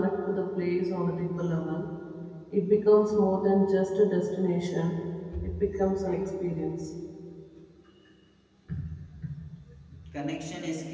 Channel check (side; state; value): both; identical; correlation 1.00